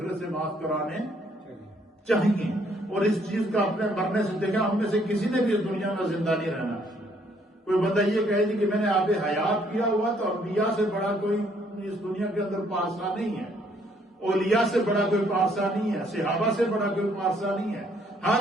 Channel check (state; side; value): normal; both; correlation 0.66